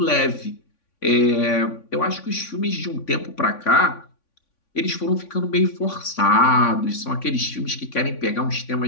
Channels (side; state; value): right; late; 3.5 ms